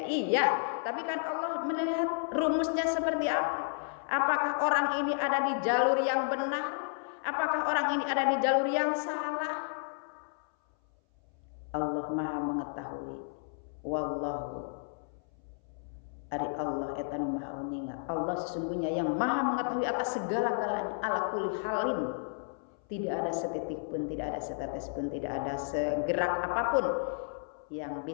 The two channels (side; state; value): right; silent; 56 dB below the other